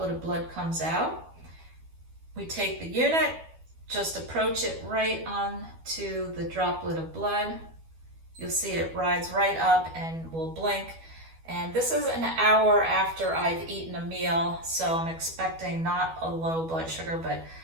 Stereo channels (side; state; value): left; late; 12 ms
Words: of blood comes out. We take the unit, just approach it right on to the droplet of blood. You'll see it rides right up and will blink. And this is an hour after I've eaten a meal, so I'm expecting not a low blood sugar, but